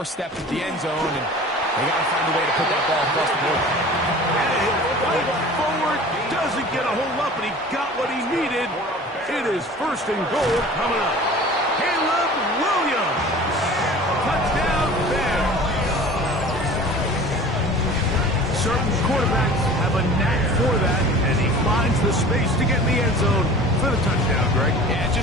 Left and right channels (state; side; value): normal; both; correlation 0.42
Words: of the end zone, and they got to find a way to put that ball across the board. Forward doesn't get a hold up, and he got what he needed. It is 1st and goal coming up. Caleb Williams. Touchdown there. Certain quarterbacks have a knack for that, and he finds the space to get in the end zone for the touchdown, Greg. Yeah,